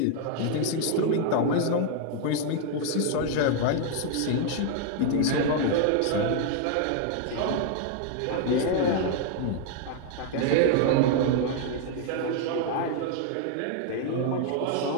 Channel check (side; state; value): both; different; correlation 0.00